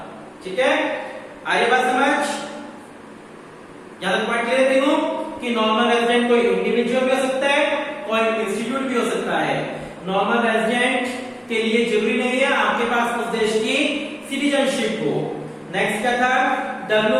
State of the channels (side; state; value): both; identical; correlation 1.00